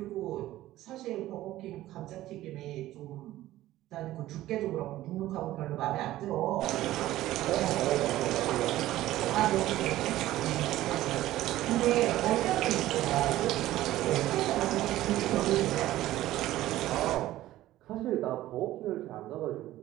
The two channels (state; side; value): quieter; left; 15.1 dB